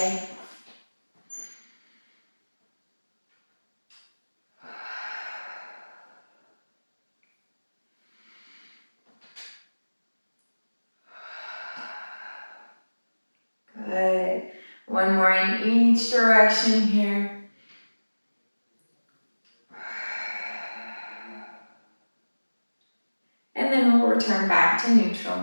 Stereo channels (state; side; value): inverted; both; correlation -1.00